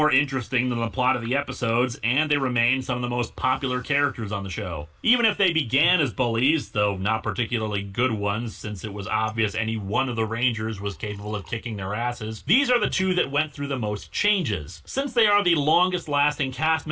interesting than the plot of the episodes, and they remain some of the most popular characters on the show. Even if they began as bullies, though not particularly good ones, since it was obvious any one of the Rangers was capable of kicking their asses, these are the two that went through the most changes. Since they are the longest-lasting cast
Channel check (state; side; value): identical; both; correlation 1.00